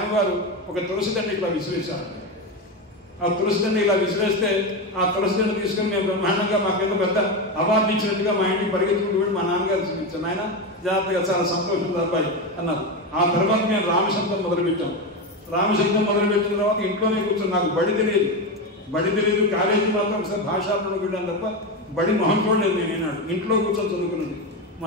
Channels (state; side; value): normal; both; correlation 0.15